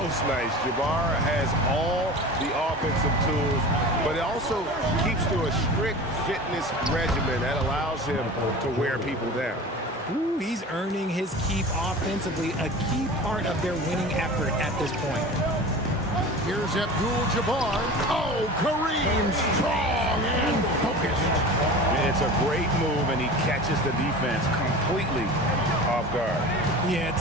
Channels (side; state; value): both; normal; correlation 0.35